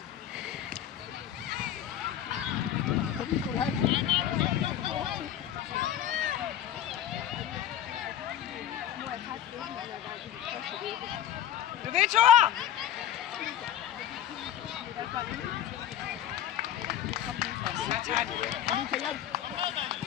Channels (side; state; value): right; quieter; 10.9 dB